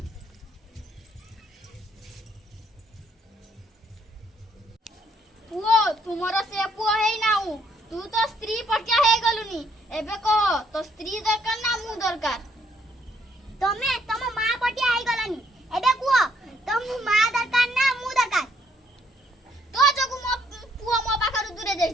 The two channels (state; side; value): normal; both; correlation 0.70